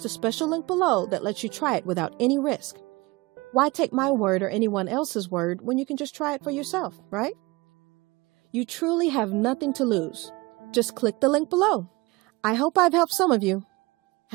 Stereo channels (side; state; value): left; quieter; 23.2 dB